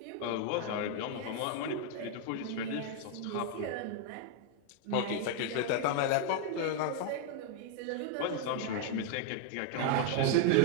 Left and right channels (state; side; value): different; both; correlation 0.00